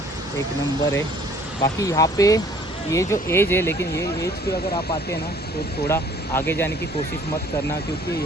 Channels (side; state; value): both; normal; correlation 0.56